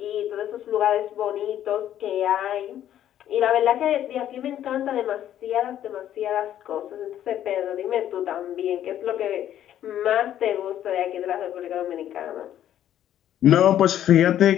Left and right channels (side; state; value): right; quieter; 11.3 dB